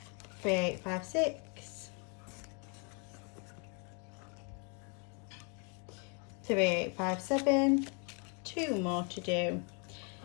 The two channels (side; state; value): right; quieter; 35.8 dB